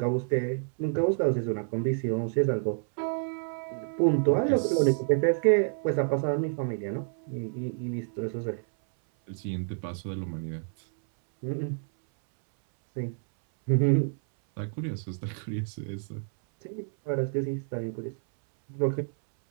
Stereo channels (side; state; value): left; silent; 59 dB below the other